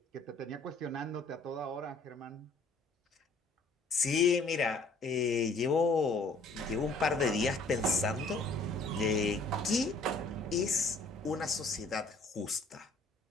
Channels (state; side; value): quieter; right; 3.2 dB